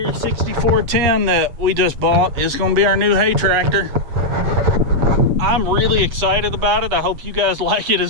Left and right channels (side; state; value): left; late; 8.0 ms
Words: 6410 that we just bought. It's gonna be our new hay tractor. I'm really excited about it. I hope you guys like it as